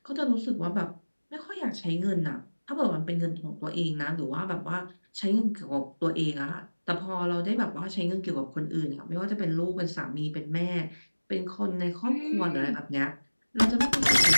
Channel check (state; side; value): inverted; both; correlation -1.00